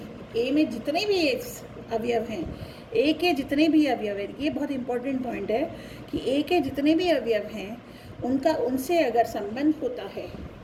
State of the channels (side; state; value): both; identical; correlation 1.00